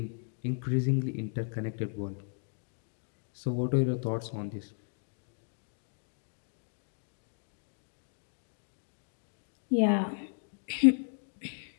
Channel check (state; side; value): silent; right; 55 dB below the other